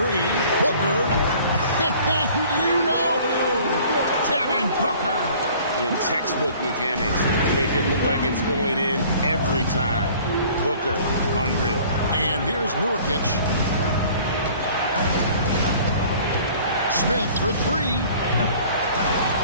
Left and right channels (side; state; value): both; inverted; correlation -0.51